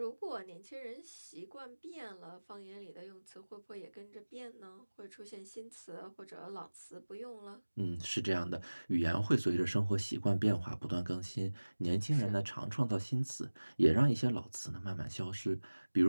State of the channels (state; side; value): inverted; both; correlation -1.00